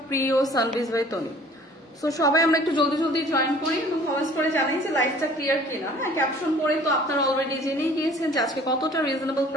প্রিয় সানবিজ বাই তনি। সো সবাই আমরা একটু জলদি জলদি জয়েন করি এবং কমেন্টস করে জানাই যে লাইফটা ক্লিয়ার কিনা। হ্যাঁ, ক্যাপশন পড়ে তো আপনারা অলরেডি জেনেই গিয়েছেন যে আজকে কতটা রিজনেবল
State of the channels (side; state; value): both; normal; correlation 0.51